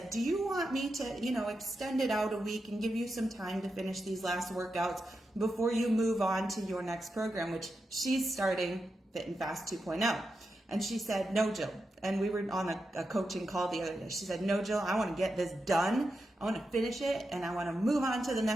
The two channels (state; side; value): normal; both; correlation 0.88